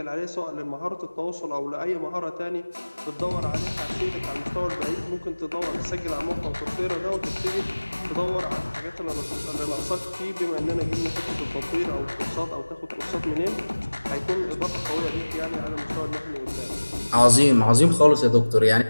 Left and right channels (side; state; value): both; inverted; correlation -1.00